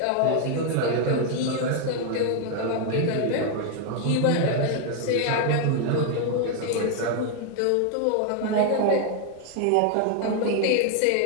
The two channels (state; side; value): different; both; correlation 0.00